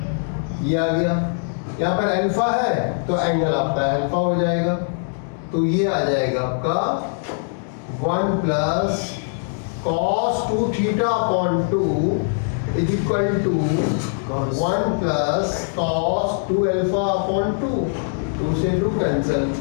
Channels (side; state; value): right; silent; digital silence